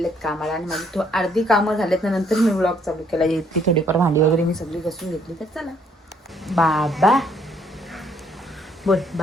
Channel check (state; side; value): normal; both; correlation 0.67